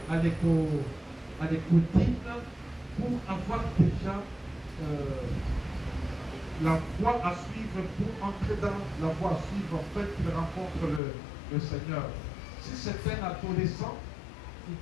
à l'écoutine pour avoir déjà la voie à suivre, pour entrer dans la voie à suivre, en fait, qu'il rencontre le Seigneur. Si c'est un adolescent, il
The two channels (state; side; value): drops out; right; at 11.0 s